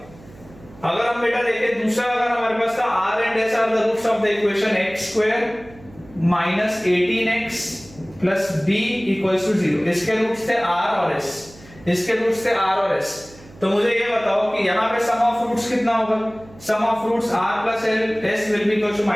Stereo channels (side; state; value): right; noise; hum, 22 dB below the sound